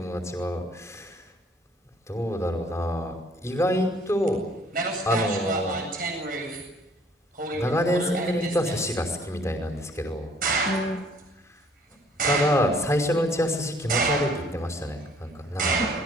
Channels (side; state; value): both; normal; correlation 0.60